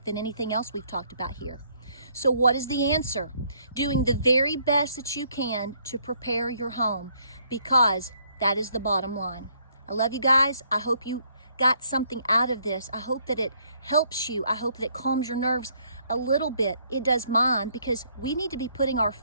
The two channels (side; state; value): both; inverted; correlation -0.67